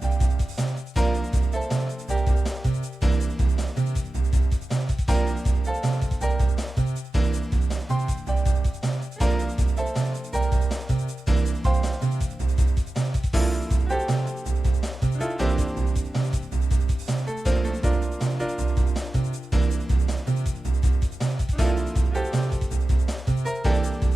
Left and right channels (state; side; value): normal; both; correlation 0.95